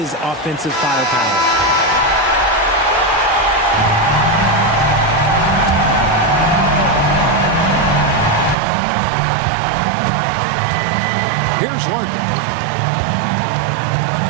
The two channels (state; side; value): drops out; left; at 8.6 s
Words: offensive firepower. Here's Larkin.